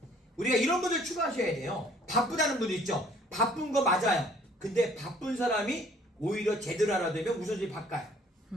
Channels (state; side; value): normal; both; correlation 0.58